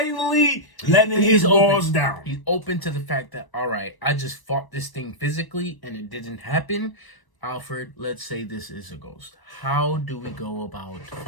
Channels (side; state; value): right; late; 1.0 ms